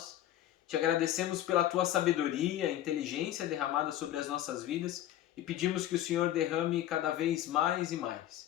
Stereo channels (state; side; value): quieter; right; 12.8 dB